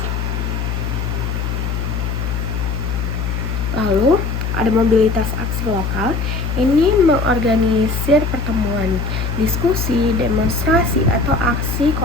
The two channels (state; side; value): noise; left; hum, 2 dB below the sound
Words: Lalu ada mobilitas aksi lokal, ini mengorganisir pertemuan, diskusi, demonstrasi, atau aksi